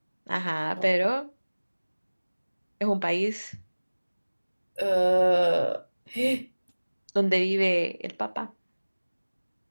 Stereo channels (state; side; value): inverted; both; correlation -1.00